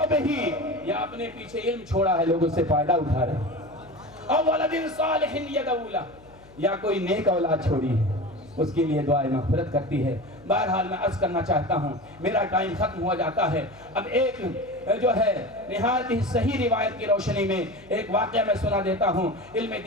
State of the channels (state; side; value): noise; left; hum, 24 dB below the sound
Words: به، یا اپنے پیچھے علم چھوڑا ہے لوگ اس سے فائدہ اٹھا رہے ہیں، اور ولد صالح يدعو له، یا کوئی نیک اولاد چھوڑی ہے اس کے لیے دعائیں مغفرت کرتی ہے۔ بہرحال میں عرض کرنا چاہتا ہوں، میرا ٹائم ختم ہوا جاتا ہے۔ اب ایک جو ہے نہایت ہی صحیح روایت کی روشنی میں ایک واقعہ میں سنا دیتا ہوں علم